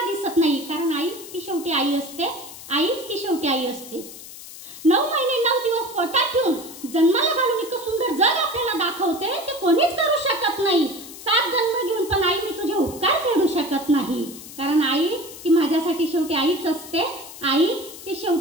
दिसत नाही? कारण आई ती शेवटी आई असते, आई ती शेवटी आई असते। 9 महिने 9 दिवस पोटात ठेवून जन्माला घालून इतकं सुंदर जग आपल्याला दाखवते, ते कोणीच करू शकत नाही। 7 जन्म घेऊन पण आई मी तुझे उपकार फेडू शकत नाही, कारण आई ती माझ्यासाठी शेवटी आईच असते, आई ती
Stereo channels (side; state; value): left; noise; hiss, 15 dB below the sound